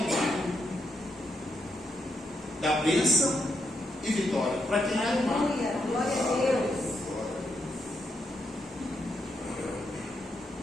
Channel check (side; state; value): both; normal; correlation 0.80